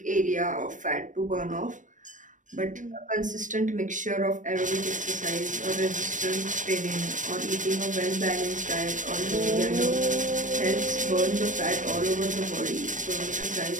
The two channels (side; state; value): left; late; 0.37 ms